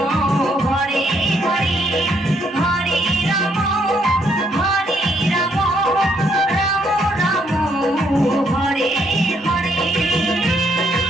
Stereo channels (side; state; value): both; normal; correlation 0.72